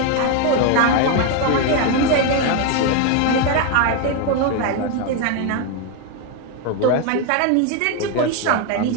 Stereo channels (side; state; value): both; different; correlation 0.01